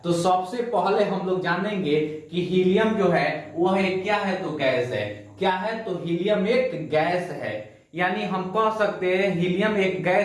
तो सबसे पहले हम लोग जानेंगे कि हीलियम जो है वह क्या है। तो गैस है। क्या है? तो हीलियम एक गैस है। यानी हम कह सकते हैं हीलियम एक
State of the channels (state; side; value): identical; both; correlation 1.00